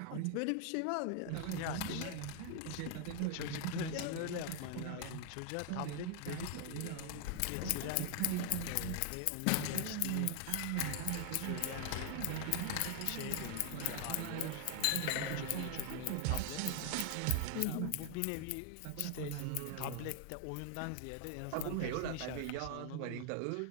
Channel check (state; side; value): different; both; correlation 0.00